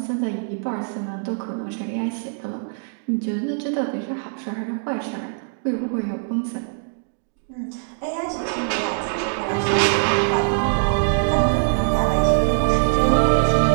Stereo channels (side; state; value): left; silent; digital silence